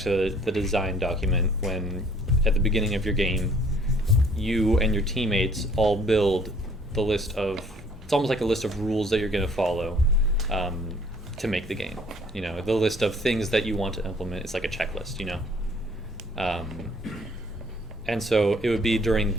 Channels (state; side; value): normal; both; correlation 0.58